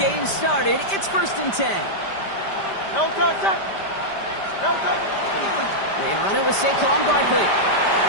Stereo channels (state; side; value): late; right; 5.1 ms